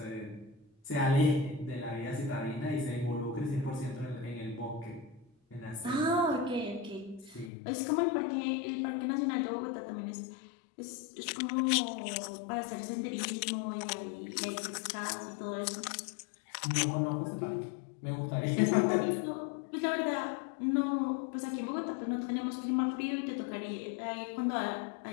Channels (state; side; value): drops out; right; at 7.5 s